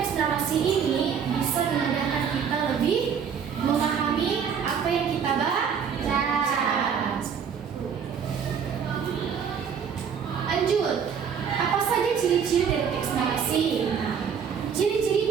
narasi ini bisa memudahkan kita lebih memahami apa yang kita baca. Lanjut, apa saja ciri-ciri dari teks narasi? Nah,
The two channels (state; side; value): quieter; left; 7.2 dB